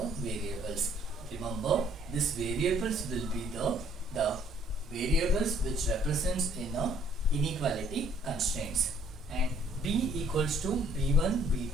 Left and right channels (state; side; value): normal; both; correlation 0.61